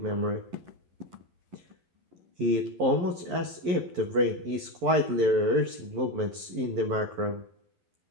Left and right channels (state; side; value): late; left; 11 ms